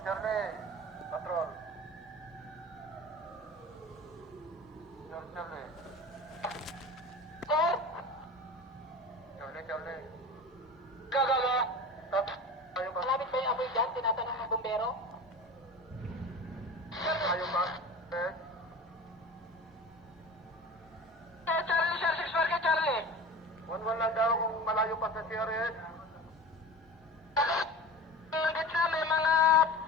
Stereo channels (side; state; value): both; normal; correlation 0.35